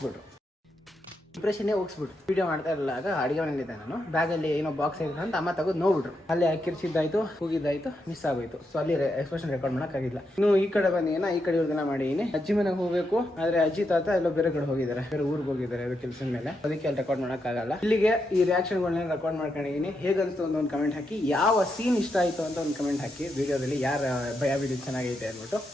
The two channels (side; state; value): both; normal; correlation 0.83